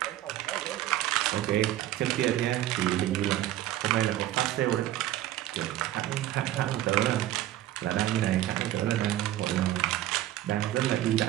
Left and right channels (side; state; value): left; quieter; 13.7 dB